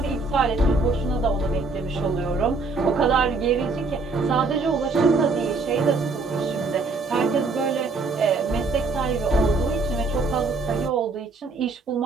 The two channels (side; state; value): left; quieter; 3.8 dB